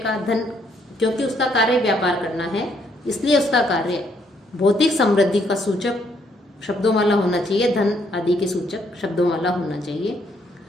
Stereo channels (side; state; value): both; normal; correlation 0.71